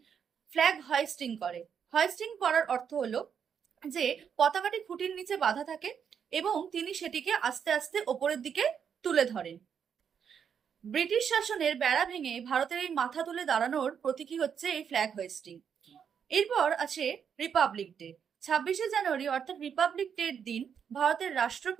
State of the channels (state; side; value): quieter; left; 7.5 dB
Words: ফ্ল্যাগ হোয়েস্টিং করে। হোয়েস্টিং করার অর্থ হলো যে পতাকাটি খুঁটির নিচে বাঁধা থাকে এবং তিনি সেটিকে আস্তে আস্তে ওপরের দিকে তুলে ধরেন। ব্রিটিশ শাসনের বেড়া ভেঙে ভারতের এই মাথা তুলে দাঁড়ানোর প্রতীকী হচ্ছে এই ফ্ল্যাগ হোয়েস্টিং। এরপর আছে রিপাবলিক ডে। 26শে জানুয়ারি অর্থাৎ রিপাবলিক ডের দিন ভারতের